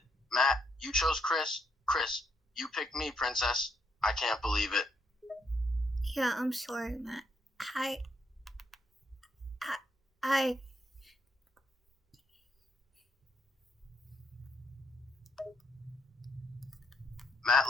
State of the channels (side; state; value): both; normal; correlation 0.74